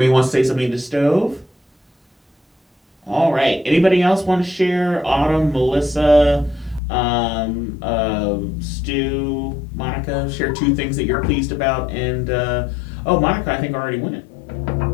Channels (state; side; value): drops out; right; at 6.8 s